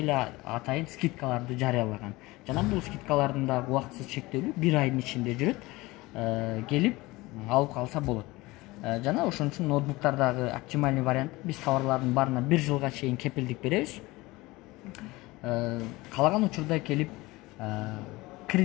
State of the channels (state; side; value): quieter; right; 21.0 dB